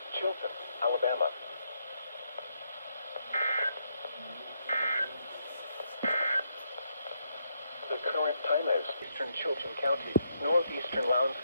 Chilton, Alabama. The current time is Eastern Chilton County, Northeastern Lowndes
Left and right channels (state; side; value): inverted; both; correlation -0.78